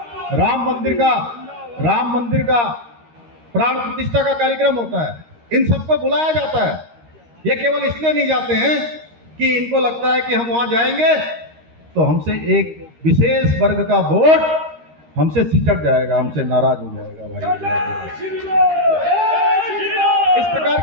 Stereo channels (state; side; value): late; left; 13 ms